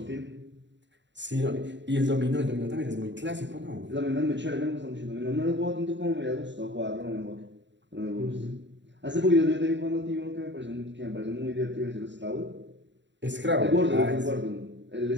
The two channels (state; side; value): late; left; 0.52 ms